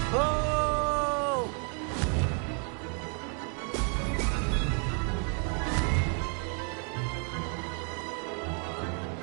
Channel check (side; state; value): left; quieter; 39.8 dB